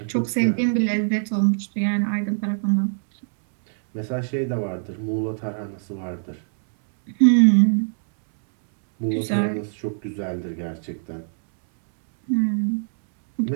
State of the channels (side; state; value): left; silent; 64 dB below the other